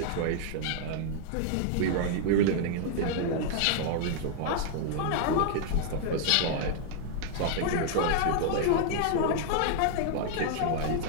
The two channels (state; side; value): different; both; correlation 0.00